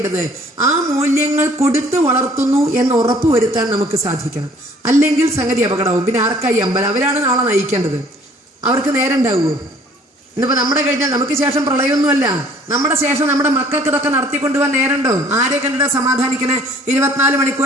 ആ മൂല്യങ്ങൾ കൊടുത്ത് വളർത്തുന്നു എന്ന് ഉറപ്പുവരുത്താൻ നമുക്ക് സാധിക്കണം. അല്ലെങ്കിൽ സംഗതി അപകടവും. പിന്നെ ആർക്കായി അമ്പലം? അവരാണ് നാളെ നയിക്കേണ്ടത്. അവർക്ക് നേരം ഉണ്ടാവുമോ? ഇന്നിപ്പോൾ നമ്മുടെ കഴിഞ്ഞാൽ നമുക്ക് ശേഷം പ്രളയമൊന്നുമല്ല, നമ്മുടെ ശേഷം നമ്മുടെ മക്കൾക്ക് ഇതൊക്കെ നടത്തിക്കൊണ്ടുപോകാൻ നേരമുണ്ടോ? ആരെ കണ്ടിട്ട് സമാധാനിക്കണേ? 24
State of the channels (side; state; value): both; normal; correlation 0.56